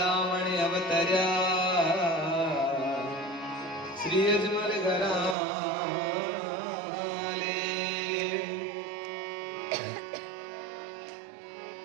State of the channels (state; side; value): drops out; left; at 5.4 s